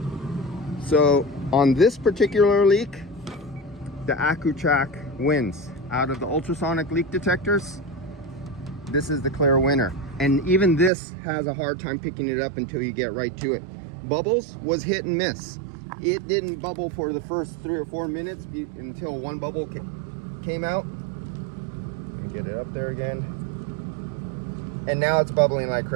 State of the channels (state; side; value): drops out; left; at 10.9 s